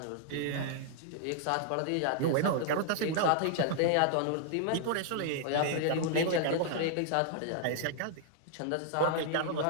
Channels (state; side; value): different; both; correlation -0.01